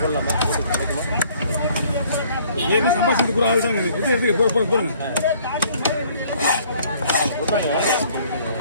சம்பாஷித்து கூட ஆள் தாங்க. போடுங்க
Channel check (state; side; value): inverted; both; correlation -0.59